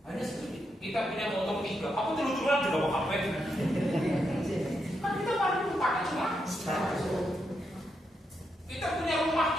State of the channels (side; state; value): both; normal; correlation 0.82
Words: Hanya sedikit. Kita punya motor 3, aku terus-terusan juga mau HP. Kan kita baru pakai cuma. Kita punya rumah